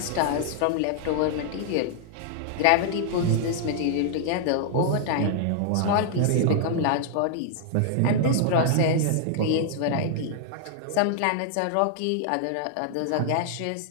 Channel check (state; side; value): different; both; correlation -0.01